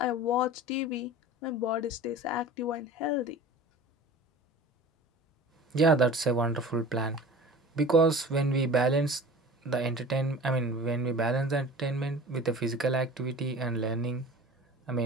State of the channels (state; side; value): normal; both; correlation 0.39